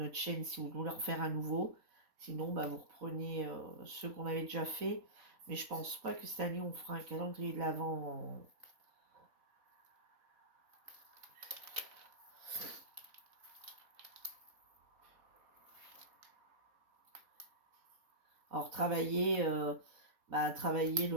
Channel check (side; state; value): left; late; 4.1 ms